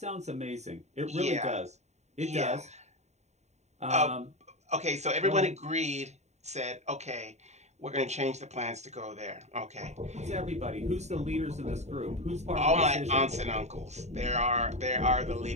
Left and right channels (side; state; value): left; late; 0.32 ms